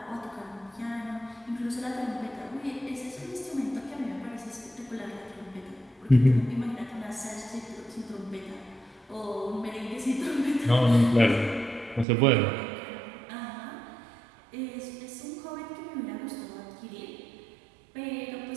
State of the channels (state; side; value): drops out; left; at 12.1 s